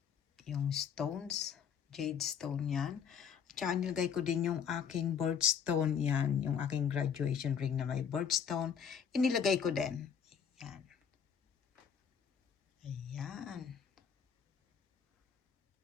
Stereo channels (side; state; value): right; quieter; 7.4 dB